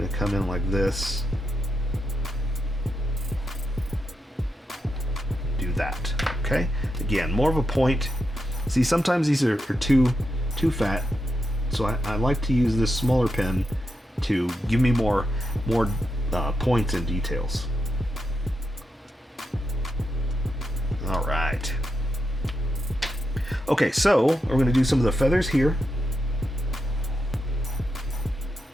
to come in like this, do that. Okay, again, more of a point. See, sometimes these are too fat, so I like to use this smaller pen to give me more points and details. All right. Okay, so we're going to do some of the feathers here.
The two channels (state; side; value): normal; both; correlation 0.86